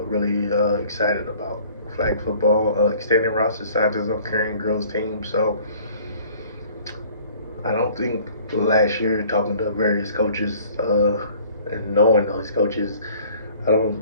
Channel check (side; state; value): both; inverted; correlation -0.52